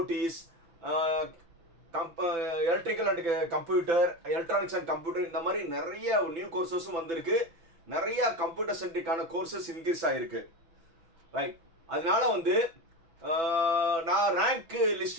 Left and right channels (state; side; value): late; left; 6.0 ms